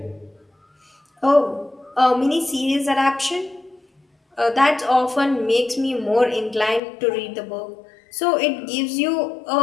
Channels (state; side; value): drops out; right; at 6.8 s